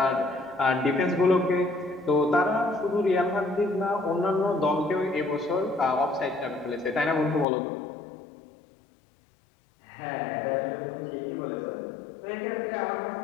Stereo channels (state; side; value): drops out; right; at 7.5 s